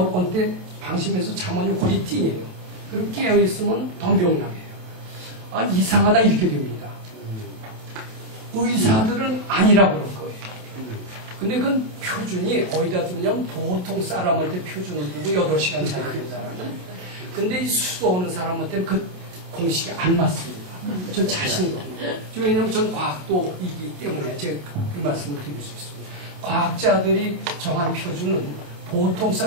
때 방심해서 잠원이 거의 띵해요. 그리고 깨어있으면 더 명랑해요. 이상하다 이렇게 됩니다. 의사들은 아니라 그럴 거예요. 근데 그건 표준이 어디다 두느냐면 보통 사람한테 표준을 두고 8시간 자야 된다라는. 근데 이 수도하는 사람한테는 그 공식이 안 맞습니다. 전 자신이 없습니다. 왜냐하면 전 과학도이기 때문에 제가 그 말씀을 드릴 수 있습니다. 과학자들이 정한 표준은 보통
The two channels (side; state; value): left; late; 28 ms